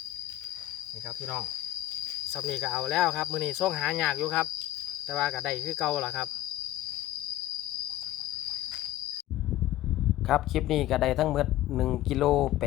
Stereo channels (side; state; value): right; quieter; 14.4 dB